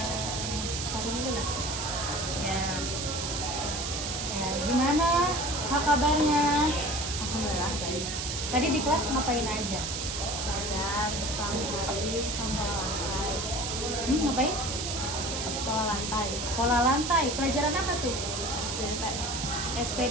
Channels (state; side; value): noise; right; hiss, 3 dB below the sound